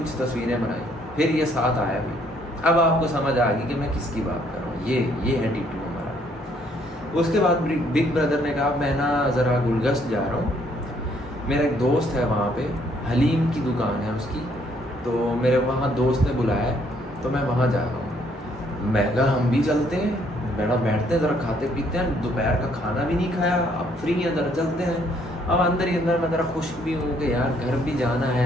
तस्वीरें बनाई, फिर ये साथ आया भी। अब आपको समझ आ गई कि मैं किसकी बात कर रहा हूँ। ये है T2 हमारा। उसके बाद बिग ब्रदर ने कहा मैं ना ज़रा गुलगस्त जा रहा हूँ, मेरा एक दोस्त है वहाँ पे, हलीम की दुकान है उसकी, तो मेरे वहाँ दोस्त ने बुलाया है तो मैं वहाँ जा रहा हूँ। मैं कहा हम भी चलते हैं, बैठते हैं ज़रा, खाते पीते हैं, दोपहर का खाना भी नहीं खाया, अब फ्री हैं ज़रा चलते हैं। अब अंदर ही अंदर मैं ज़रा खुश भी हूँ कि यार घर भी जाना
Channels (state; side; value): normal; both; correlation 0.67